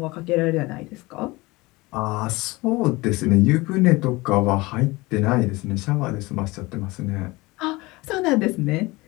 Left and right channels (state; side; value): quieter; right; 22.2 dB